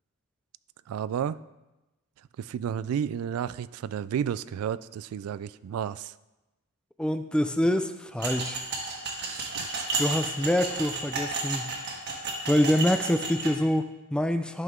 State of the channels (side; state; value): both; normal; correlation 0.66